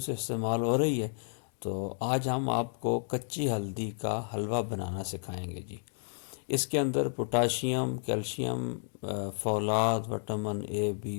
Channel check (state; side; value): silent; right; digital silence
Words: استعمال ہو رہی ہے، تو آج ہم آپ کو کچی ہلدی کا حلوہ بنانا سکھائیں گے جی۔ اس کے اندر پوٹاشیم، کیلشیم، فولاد، وٹامن اے،